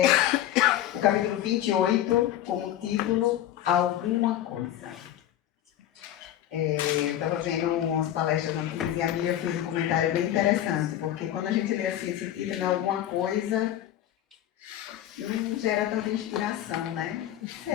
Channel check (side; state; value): right; quieter; 12.2 dB